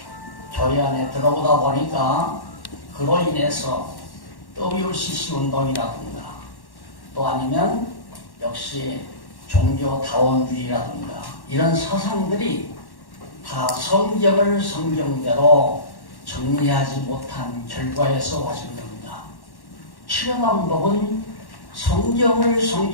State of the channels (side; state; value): right; late; 1.1 ms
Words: 교회 안에 들어오다 보니까 그로 인해서 WCC 운동이라든가 또 아니면 역시 종교다원주의라든가 이런 사상들이 다 성경을 성경대로 정리하지 못한 결과에서 와진 겁니다. 치료 방법은 성경을